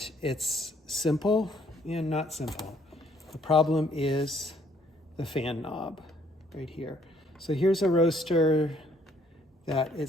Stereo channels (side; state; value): both; normal; correlation 0.65